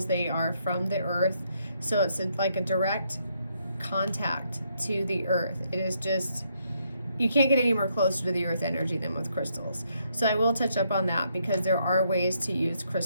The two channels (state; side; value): inverted; both; correlation -0.75